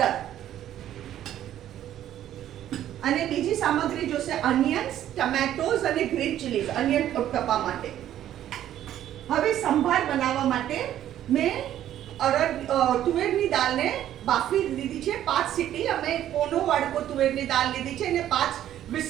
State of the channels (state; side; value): quieter; left; 11.8 dB